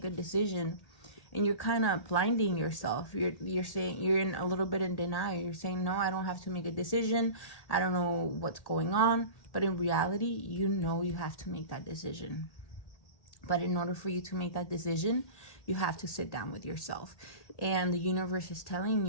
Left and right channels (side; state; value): right; late; 1.8 ms